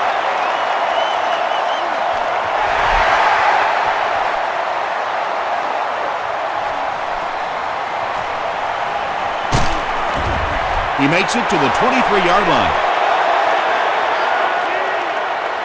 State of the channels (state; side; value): identical; both; correlation 1.00